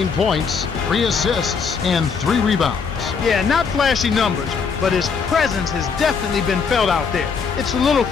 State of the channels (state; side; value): quieter; right; 5.7 dB